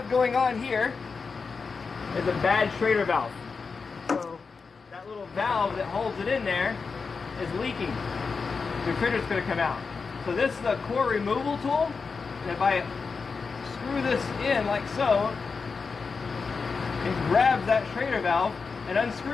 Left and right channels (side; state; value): right; quieter; 4.9 dB